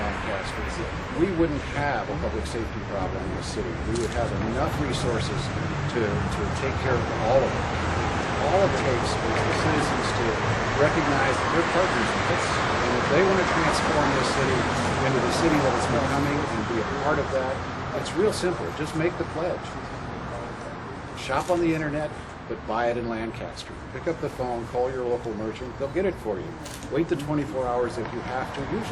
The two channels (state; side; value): identical; both; correlation 1.00